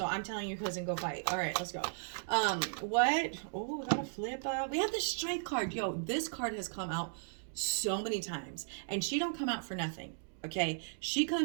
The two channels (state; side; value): silent; left; digital silence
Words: I'm telling you, cousin, go fight. All right, let's go. What? Oh, we got a flip up. We have the Strength card. Yo, this card has come out so many times, and she don't come out for nothing. Okay, she